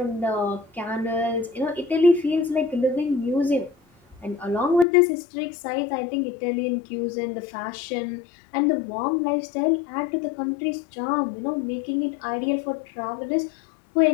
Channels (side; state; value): right; drops out; at 4.9 s